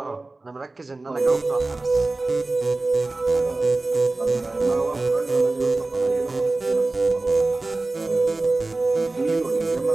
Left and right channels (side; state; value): left; quieter; 3.2 dB